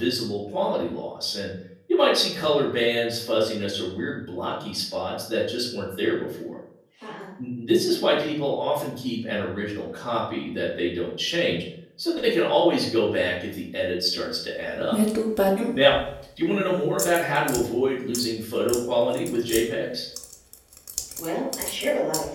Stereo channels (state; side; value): identical; both; correlation 1.00